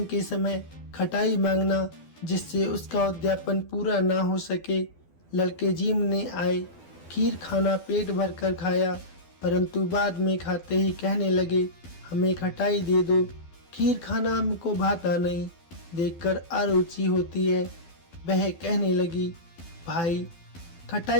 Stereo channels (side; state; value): right; late; 12 ms